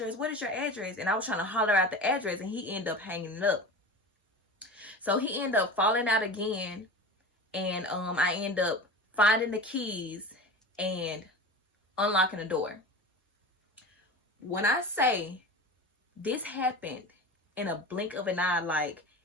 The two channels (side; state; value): both; normal; correlation 0.32